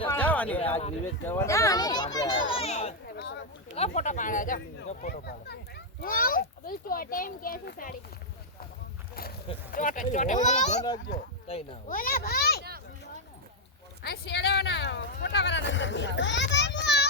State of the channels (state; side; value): normal; both; correlation -0.02